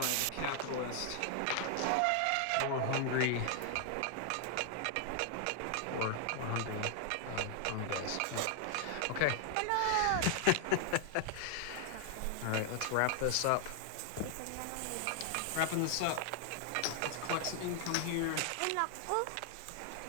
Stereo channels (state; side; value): different; both; correlation 0.00